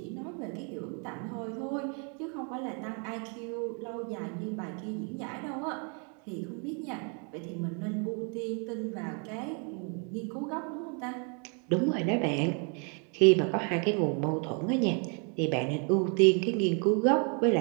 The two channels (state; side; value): quieter; left; 38.0 dB